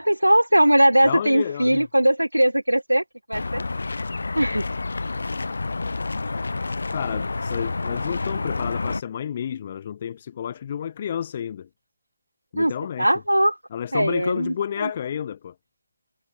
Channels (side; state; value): both; inverted; correlation -0.96